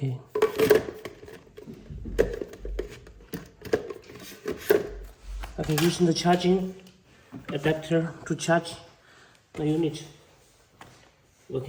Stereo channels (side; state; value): both; identical; correlation 1.00